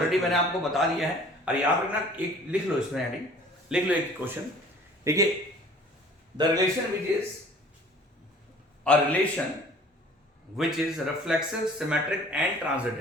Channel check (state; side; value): normal; both; correlation 0.50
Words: मैंने आपको बता दिया है। और याद रखना, एक लिख लो इसमें हेडिंग, लिख लो एक क्वेश्चन। देखिए, the relation which is a relation which is reflexive, symmetric and